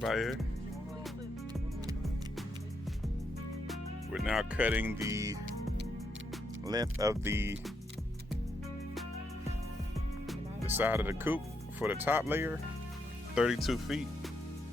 out here. We're now cutting the length of the side of the coop for the top layer, 32 feet.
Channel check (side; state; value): both; normal; correlation 0.79